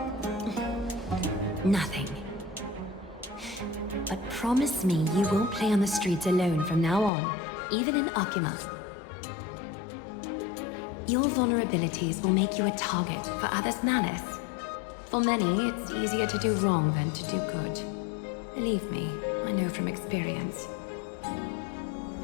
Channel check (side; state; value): right; drops out; at 7.1 s